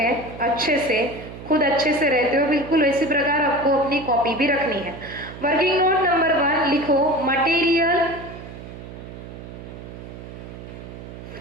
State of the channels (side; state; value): right; noise; hum, 13 dB below the sound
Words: अच्छे से खुद अच्छे से रहते हो, बिल्कुल इसी प्रकार आपको अपनी कॉपी भी रखनी है। वर्किंग नोट नंबर 1 लिखो, material